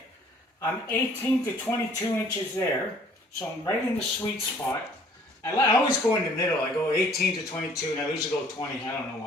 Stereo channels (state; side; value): normal; both; correlation 0.57